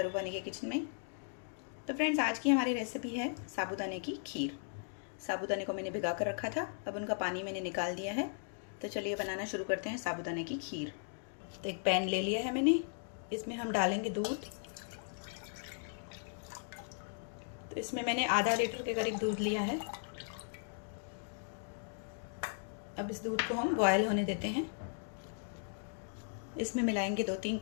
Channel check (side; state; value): right; silent; digital silence